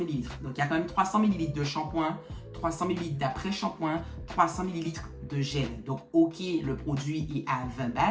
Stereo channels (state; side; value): identical; both; correlation 1.00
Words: Donc, il y a quand même 300 ml de shampoing, 300 ml d'après-shampoing, 300 ml de gel. Donc, ok, le produit est à 20